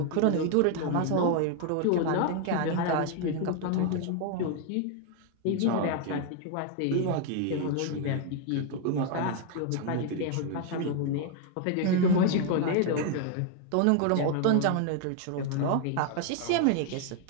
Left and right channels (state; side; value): different; both; correlation 0.00